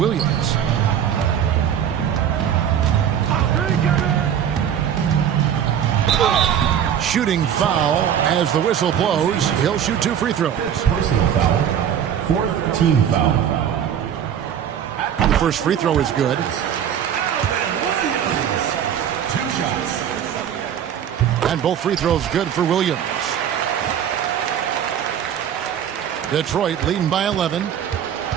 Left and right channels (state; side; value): quieter; left; 9.2 dB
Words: Shooting foul as the whistle blows. He'll shoot 2 free throws. Personal foul. 4th team foul. The first free throw is good. 2 shots. And both free throws good for Williams. Detroit leading by 11.